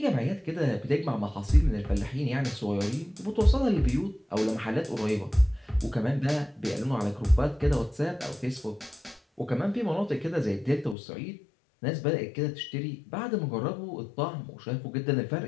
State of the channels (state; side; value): drops out; right; at 11.0 s